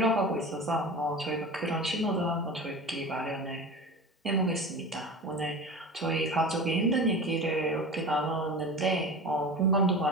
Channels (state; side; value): normal; both; correlation 0.32